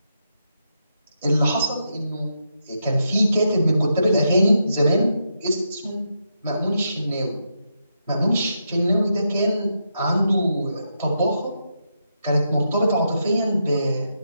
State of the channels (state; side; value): inverted; both; correlation -0.84